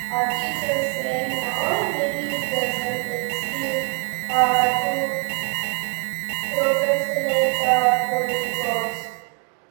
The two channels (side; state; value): left; quieter; 36.2 dB